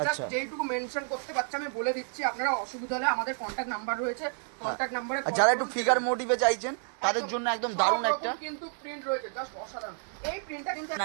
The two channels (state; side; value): silent; left; 58 dB below the other